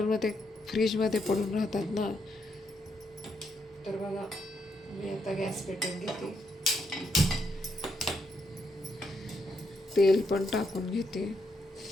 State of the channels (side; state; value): both; normal; correlation 0.78